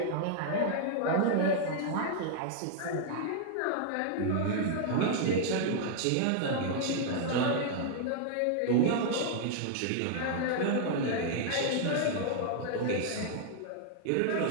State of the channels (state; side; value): different; both; correlation -0.01